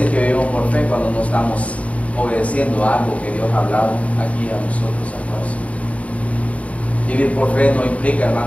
que vivimos por fe cuando no estamos obedeciendo a algo que Dios ha hablado aquí a nosotros a todos. Vivir por fe no implica,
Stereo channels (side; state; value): right; late; 0.067 ms